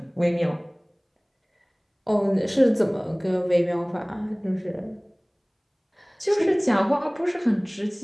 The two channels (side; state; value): both; identical; correlation 1.00